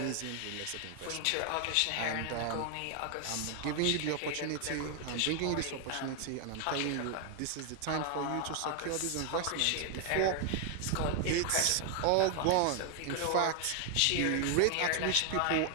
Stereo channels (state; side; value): different; both; correlation 0.00